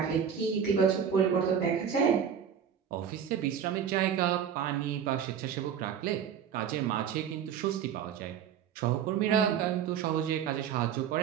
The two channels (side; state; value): left; quieter; 8.2 dB